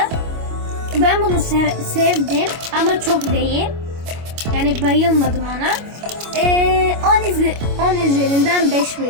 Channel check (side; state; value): left; late; 25 ms